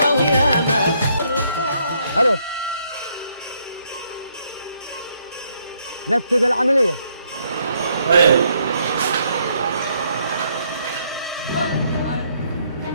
الو نفذ العملية. ايوه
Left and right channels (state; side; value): inverted; both; correlation -0.71